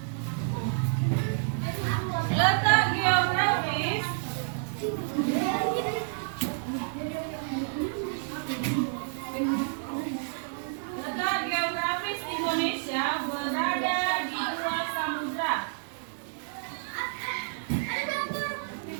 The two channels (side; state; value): left; silent; digital silence